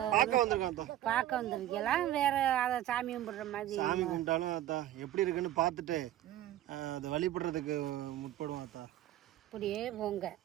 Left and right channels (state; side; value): quieter; left; 13.2 dB